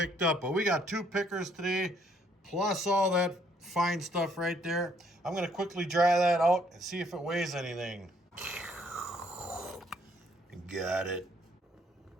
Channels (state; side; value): normal; both; correlation 0.66